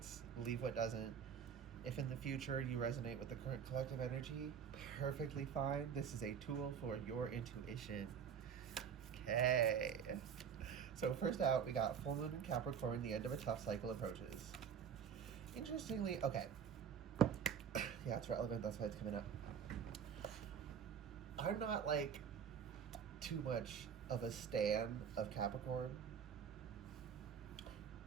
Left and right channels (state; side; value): quieter; left; 7.5 dB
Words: leave what doesn't. If in the future you resonate with the current collective energy, perfectly fine. This is a tool for your intuition. Okay. So first out, we got full moon in Capricorn, the end of a tough cycle approaches. Interestingly, okay. Yeah, it's relevant, that's why it's coming up. I'm not like too much of a stan of Capricorn.